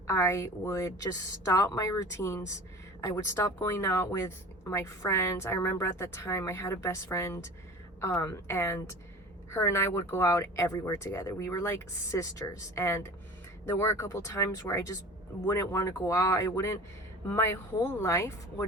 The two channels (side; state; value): both; normal; correlation 0.38